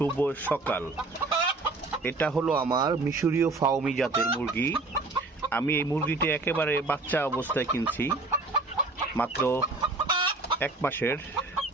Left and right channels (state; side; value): quieter; left; 3.3 dB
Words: সকাল। এটা হলো আমার মিশরীয় ফাউমি জাতের মুরগি। আমি এই মুরগিটি একেবারে বাচ্চা অবস্থায় কিনছি, মাত্র 1 মাসের